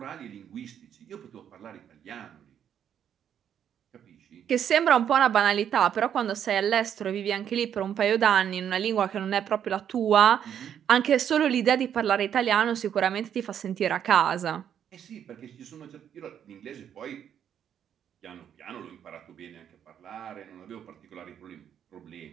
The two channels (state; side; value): quieter; left; 9.1 dB